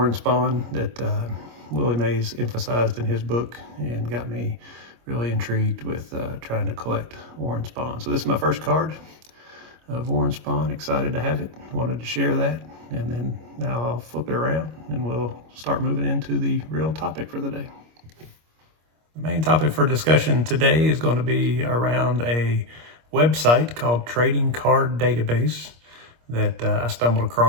Spahn that Willie Mays emphasized in his book and got me really intrigued with trying to collect Warren Spahn. So this is my first card of Warren Spahn. Excited to have it. Wanted to share that. And then now I'll flip it around and we'll start moving into the real topic for the day. The main topic for discussion today is going to be around a website called Trading Card Database that I stumbled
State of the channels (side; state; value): left; late; 25 ms